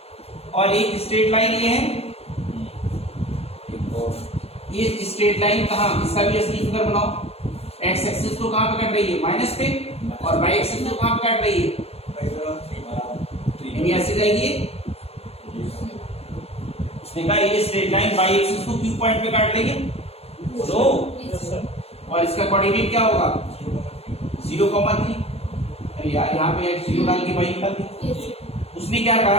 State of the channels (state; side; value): late; right; 0.29 ms